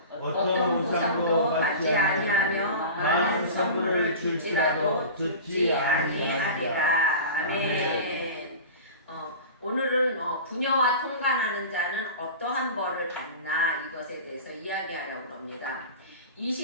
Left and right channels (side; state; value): both; inverted; correlation -0.34